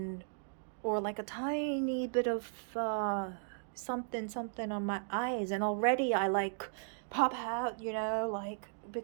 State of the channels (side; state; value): left; silent; digital silence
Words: or like a tiny bit of something on my eyes, and already I like pop out, you know, like,